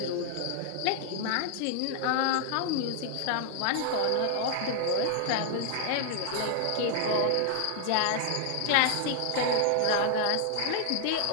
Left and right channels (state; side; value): different; both; correlation 0.00